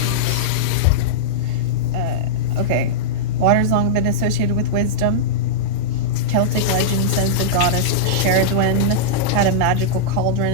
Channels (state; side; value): different; both; correlation -0.05